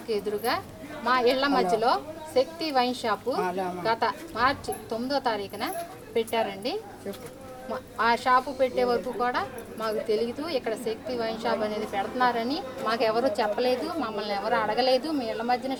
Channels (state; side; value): identical; both; correlation 1.00